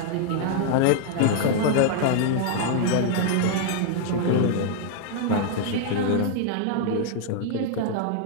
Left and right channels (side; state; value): both; different; correlation 0.00